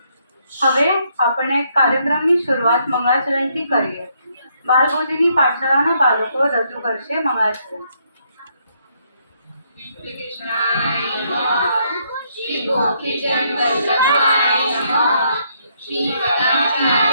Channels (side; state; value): both; inverted; correlation -0.73